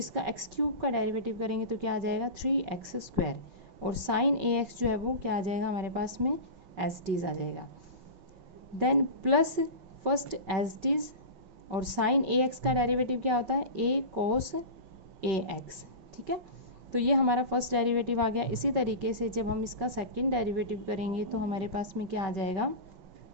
एक्स क्यूब का डेरिवेटिव करेंगे तो क्या आ जाएगा 3x स्क्वायर, और साइन ax जो है वो क्या आ जाएगा हमारे पास में एज टीज आ जाएगा, then plus first as it is, और साइन ax का डेरिवेटिव क्या होता है a cos ax। ठीक है, तो ये हमारा फर्स्ट डेरिवेटिव आ गया। इसी तरीके से जब हम इसका सेकंड डेरिवेटिव करेंगे तो हमारे पास में क्या आ जाएगा,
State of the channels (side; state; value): left; late; 5.3 ms